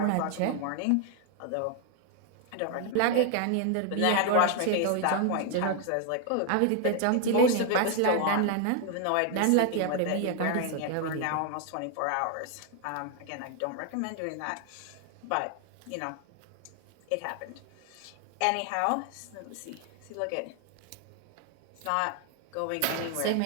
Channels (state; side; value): different; both; correlation 0.00